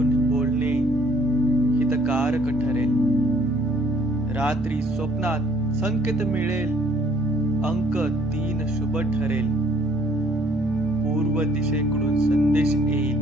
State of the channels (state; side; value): normal; both; correlation 0.60